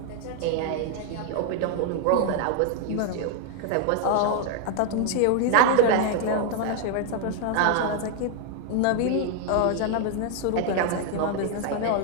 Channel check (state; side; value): different; both; correlation 0.00